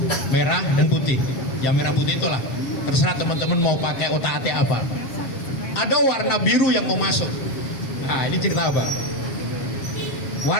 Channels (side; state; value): right; late; 7.4 ms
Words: merah dan putih. Yang merah putih itulah terserah teman-teman mau pakai otak-atik apa. Ada warna biru yang mau masuk. Nah ini cerita apa?